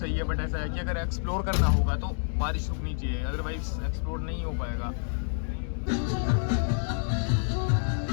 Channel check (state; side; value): silent; right; 59 dB below the other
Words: है, बट ऐसा है कि अगर एक्सप्लोर करना होगा तो बारिश रुकनी चाहिए, अदरवाइज एक्सप्लोर नहीं हो पाएगा।